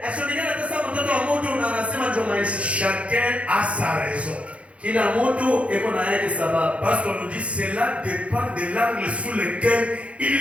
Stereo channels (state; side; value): late; left; 0.062 ms